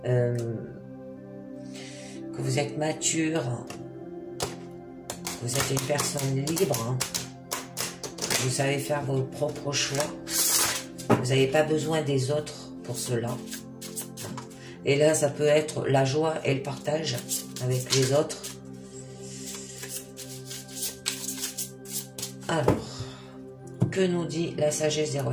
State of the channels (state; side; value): identical; both; correlation 1.00